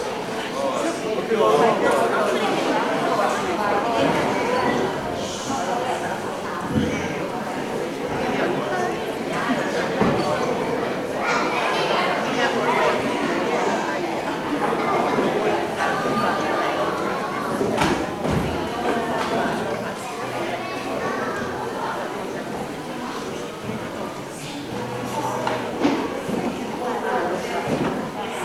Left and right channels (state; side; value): identical; both; correlation 1.00